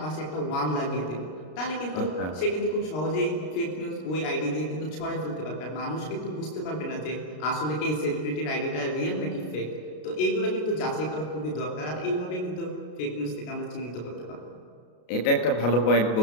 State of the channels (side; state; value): right; late; 33 ms